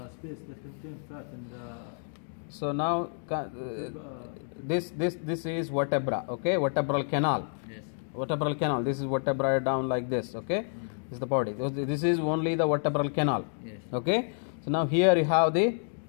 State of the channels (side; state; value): right; silent; digital silence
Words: space that contains fat and so now this is vertebra. Okay, vertebral canal. Vertebral canal. This is vertebra down like this. Okay, this is the body. This is only the vertebral canal. Okay, so now here you have the